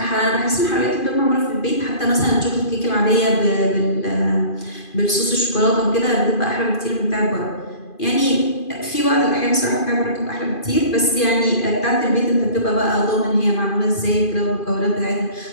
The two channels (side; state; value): right; late; 2.5 ms